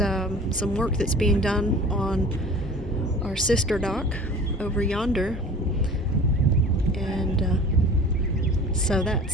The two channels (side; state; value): both; normal; correlation 0.43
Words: some work that's being done on our sister dock over yonder. And so